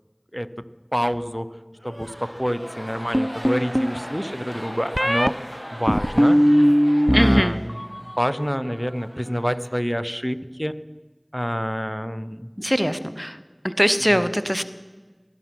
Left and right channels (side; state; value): both; identical; correlation 1.00